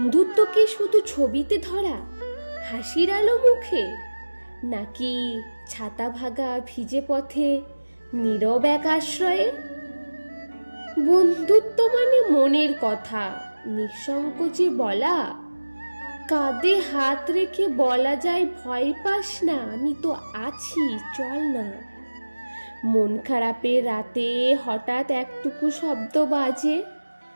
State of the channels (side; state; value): both; inverted; correlation -1.00